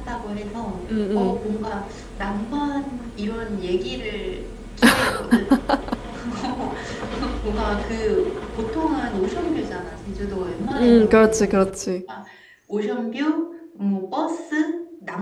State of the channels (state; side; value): identical; both; correlation 1.00